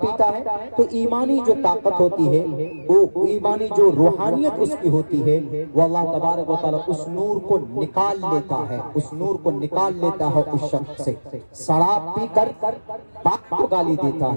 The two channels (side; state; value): both; inverted; correlation -1.00